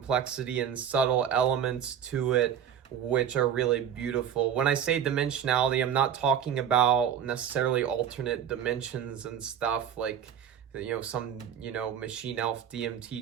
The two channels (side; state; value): left; quieter; 8.9 dB